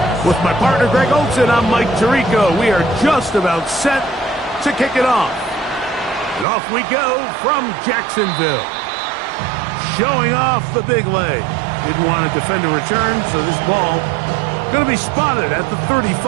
With my partner Greg Olson, I'm Mike Tirico. We are just about set to kick it off. And off we go from Jacksonville. Showing off the big leg. Didn't want to defend a return, so this ball going to be spotted at the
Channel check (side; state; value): left; drops out; at 6.5 s